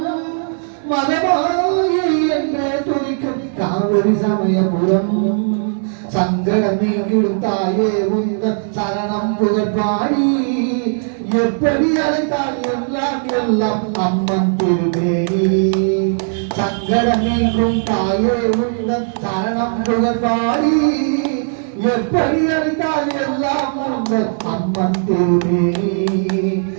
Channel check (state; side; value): silent; left; 59 dB below the other